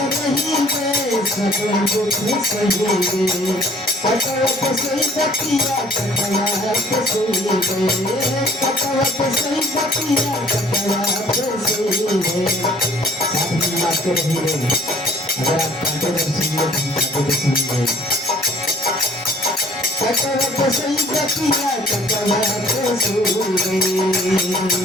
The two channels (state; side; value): normal; both; correlation 0.55